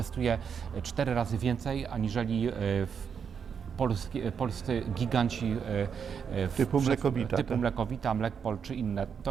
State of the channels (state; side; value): quieter; left; 6.9 dB